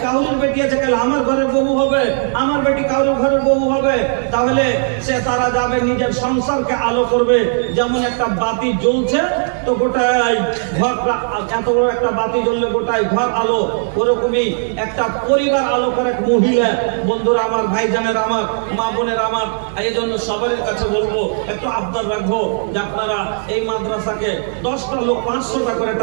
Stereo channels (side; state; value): left; silent; 68 dB below the other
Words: কাউরের বেটি আছে, কাল আমার ঘরের বউ হবে, আমার বেটি কাউরের ঘরের বউ হবে। তাহলে সে তারা যাবে, নিজের সংসারকে আলো করবে। যেমন একটা বাতি জ্বলছে তো গোটাই ঘর, এত বড় একটা বাতি জ্বললে গোটাই ঘর আলো, ওরকমই একটা পরিবার আলো করে মহিলা। বন্ধুরা আমার, ভাইজানের আমার, মা বোনের আমার, এই জন্য সবার কাছে বলবো, একটু আবদার রাখবো যে আপনারা এই মাদ্রাসাকে 10টা লোক 500 টাকা করে